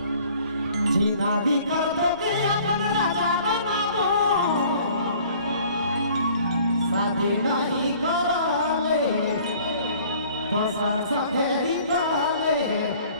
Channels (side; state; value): both; inverted; correlation -0.53